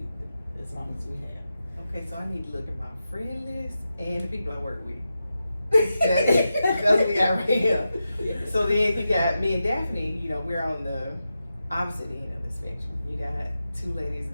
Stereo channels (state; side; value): inverted; both; correlation -0.90